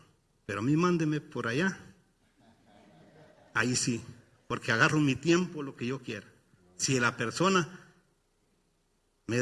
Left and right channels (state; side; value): identical; both; correlation 1.00